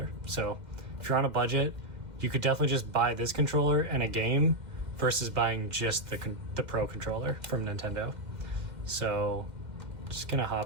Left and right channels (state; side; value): late; left; 2.1 ms